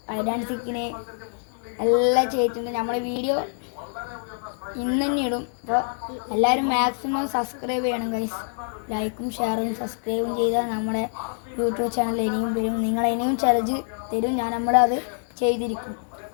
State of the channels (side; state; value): right; silent; 61 dB below the other